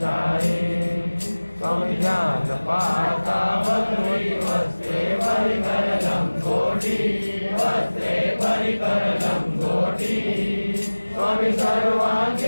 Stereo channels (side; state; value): both; inverted; correlation -1.00